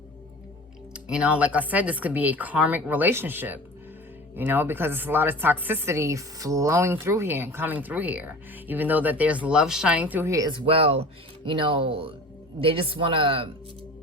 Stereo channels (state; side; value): normal; both; correlation 0.38